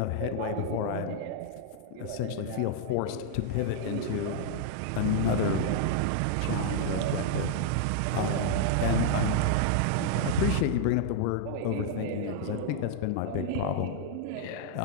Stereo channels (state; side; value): different; both; correlation -0.01